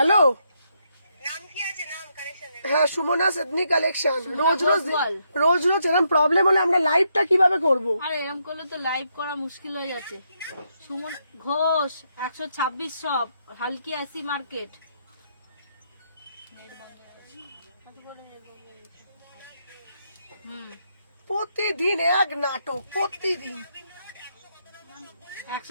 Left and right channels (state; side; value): inverted; both; correlation -0.78